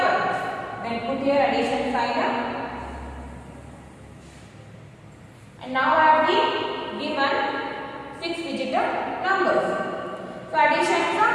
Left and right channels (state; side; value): identical; both; correlation 1.00